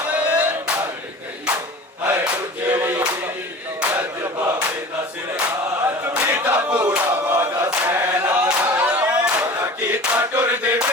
ਮਰ ਗਈ ਹਾਏ ਉਜੜੀ ਜਦ ਬਾਬੇ ਦਾ ਸਿਰ ਆਇਆ ਕੀਤਾ ਪੂਰਾ ਵਾਦਾ ਸੈਨਾ ਕੀਤਾ ਟੁਰਦੇ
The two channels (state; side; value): normal; both; correlation 0.39